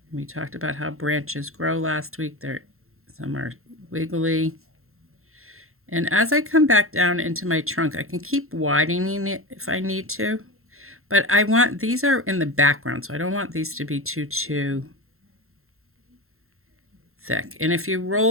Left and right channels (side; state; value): left; late; 0.62 ms